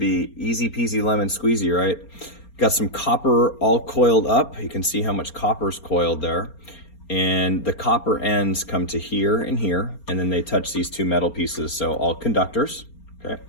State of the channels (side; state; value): right; late; 4.3 ms